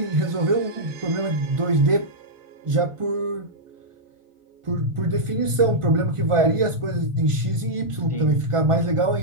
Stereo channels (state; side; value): late; left; 1.5 ms